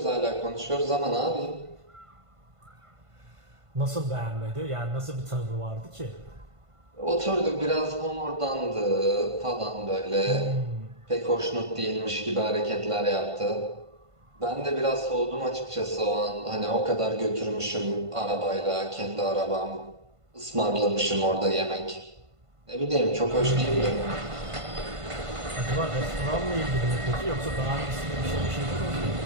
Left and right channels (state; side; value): late; left; 1.5 ms